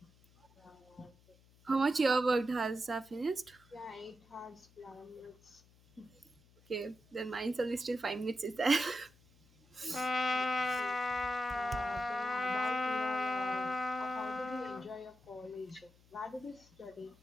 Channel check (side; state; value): left; noise; hum, 28 dB below the sound